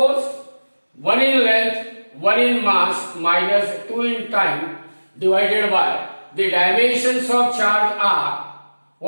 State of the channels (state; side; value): inverted; both; correlation -1.00